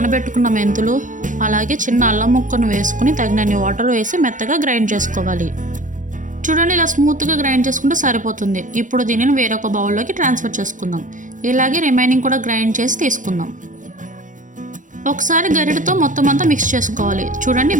మెంతులు అలాగే చిన్న అల్లం ముక్కను వేసుకుని తగినన్ని వాటర్ వేసి మెత్తగా గ్రైండ్ చేసుకోవాలి. చూడండి ఇలా స్మూత్గా గ్రైండ్ చేసుకుంటే సరిపోతుంది. ఇప్పుడు దీనిని వేరొక బౌల్లోకి ట్రాన్స్ఫర్ చేసుకుందాం. ఇలాగే రిమైనింగ్ కూడా గ్రైండ్ చేసి తీసుకుందాం. ఒకసారి గరిటెతో మొత్తం అంతా మిక్స్ చేసుకోవాలి. చూడండి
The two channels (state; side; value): late; left; 0.37 ms